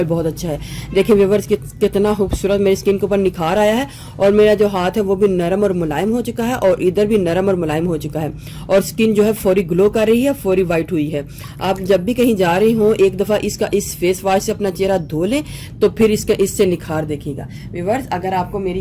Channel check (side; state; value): both; identical; correlation 1.00